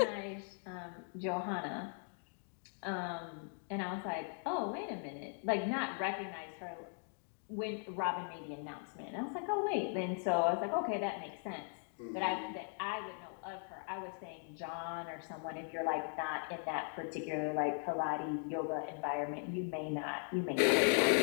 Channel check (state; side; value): silent; right; 52 dB below the other